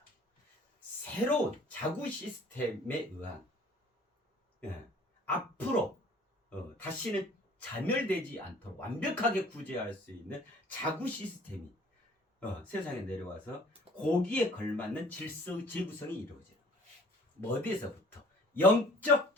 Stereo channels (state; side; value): normal; both; correlation 0.52